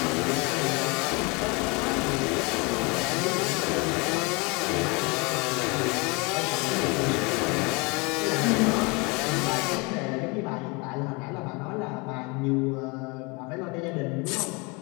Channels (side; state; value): right; quieter; 28.6 dB